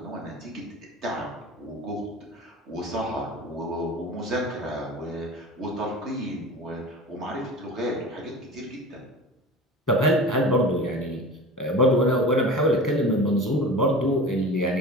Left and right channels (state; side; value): normal; both; correlation 0.35